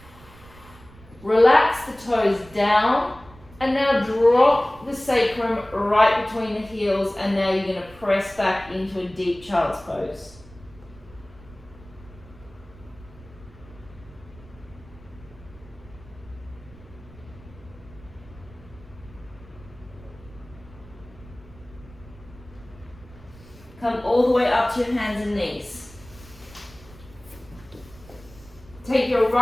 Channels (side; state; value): right; noise; rumble, 21 dB below the sound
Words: Relax the toes down. And now drop the sacrum right between the heels. And now you're going to press back into a deep child's pose. Come all the way up to your hands and knees. Take your